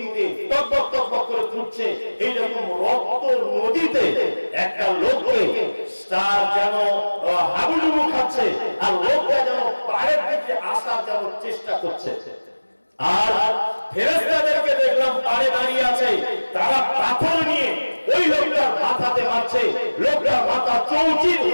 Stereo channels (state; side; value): inverted; both; correlation -1.00